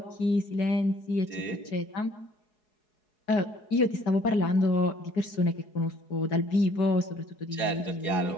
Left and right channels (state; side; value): late; right; 4.7 ms